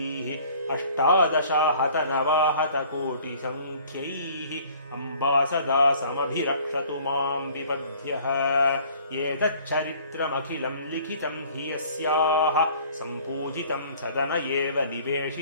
अष्टादशाहतनवाहतकोटिसङ्ख्यैः अम्बा सदा समभिरक्षतु मां विपद्यः एतच्चरित्रमखिलं लिखितं हि यस्याः सम्पूजितं सदन एव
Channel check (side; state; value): both; inverted; correlation -0.52